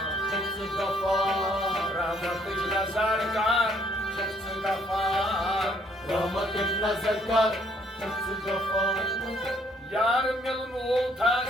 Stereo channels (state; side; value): normal; both; correlation 0.65